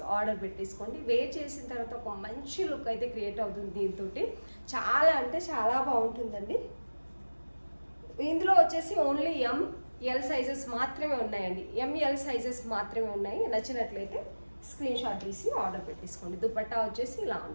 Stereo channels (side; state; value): both; inverted; correlation -1.00